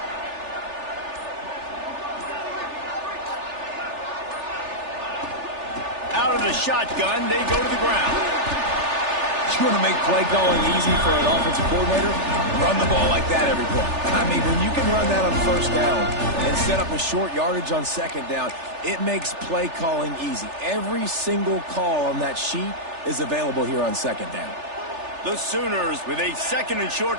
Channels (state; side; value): late; left; 3.4 ms